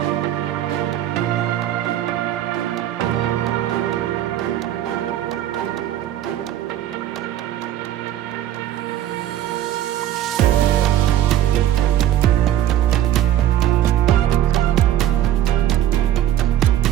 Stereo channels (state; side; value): quieter; left; 12.0 dB